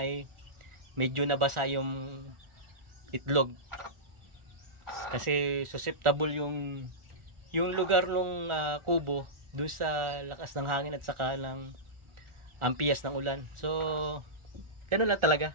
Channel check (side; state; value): left; late; 1.4 ms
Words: medyo nabasa yung itlog. Kasi susceptible yung lugar ng kubo dun sa lakas ng hangin at saka ng ampiyas ng ulan. So ganun lang talaga,